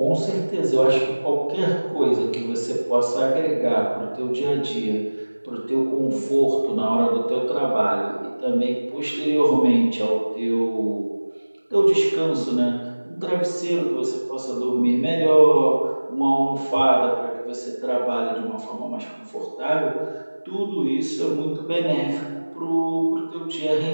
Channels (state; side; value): inverted; both; correlation -1.00